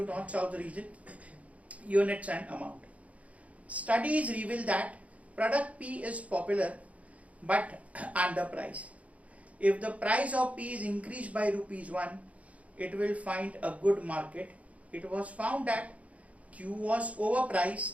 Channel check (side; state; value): left; late; 0.067 ms